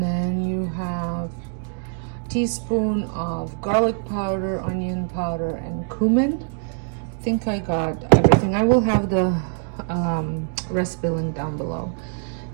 then you have teaspoon of garlic powder, onion powder, and cumin. I think I got everything. I will have the recipe link down below.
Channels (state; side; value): silent; left; 63 dB below the other